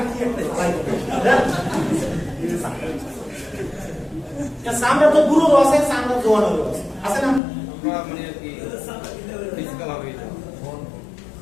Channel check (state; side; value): drops out; right; at 7.4 s